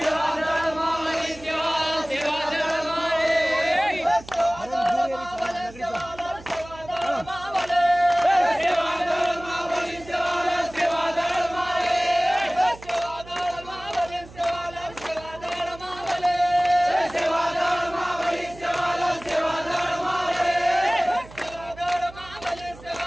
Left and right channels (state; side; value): noise; right; hum, 19 dB below the sound